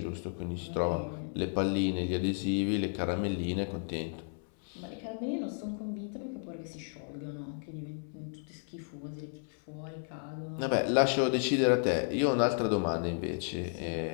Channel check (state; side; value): silent; right; 56 dB below the other